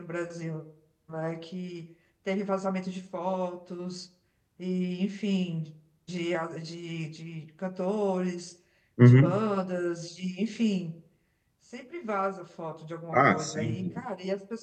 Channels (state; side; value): identical; both; correlation 1.00